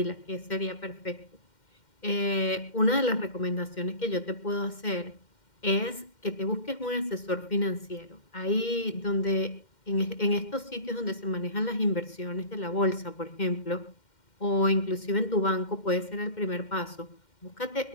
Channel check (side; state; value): right; late; 2.1 ms